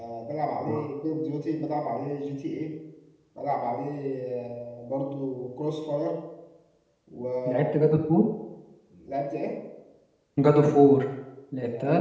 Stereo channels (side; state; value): both; identical; correlation 1.00